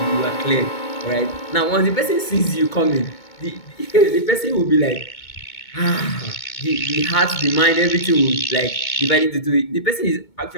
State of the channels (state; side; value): late; right; 2.2 ms